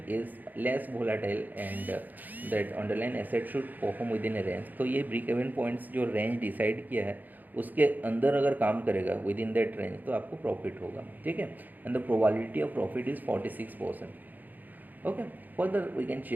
is less volatile and that underlying asset should perform within a range. तो ये break even points जो range decide किया है उसके अंदर अगर काम करेगा within that range तो आपको profit होगा. ठीक है. And the probability of profit is 46%. Okay. Further we can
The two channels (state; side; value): late; left; 0.084 ms